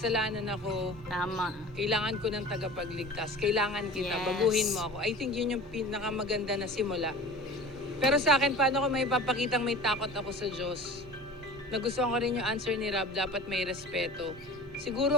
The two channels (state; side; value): normal; both; correlation 0.39